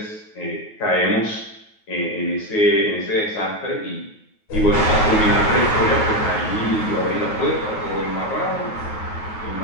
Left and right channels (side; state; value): right; late; 9.4 ms